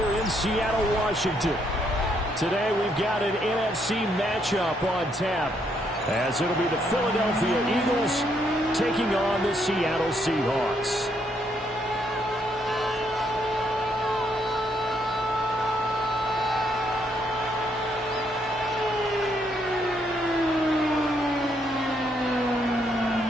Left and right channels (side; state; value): both; normal; correlation 0.73